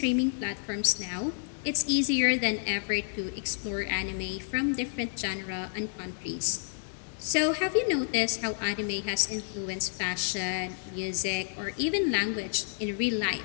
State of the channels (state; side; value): silent; right; digital silence